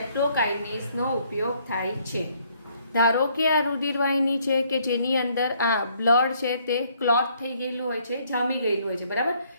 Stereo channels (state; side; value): inverted; both; correlation -0.66